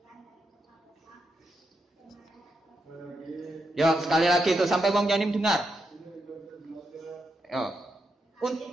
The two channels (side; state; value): both; normal; correlation 0.83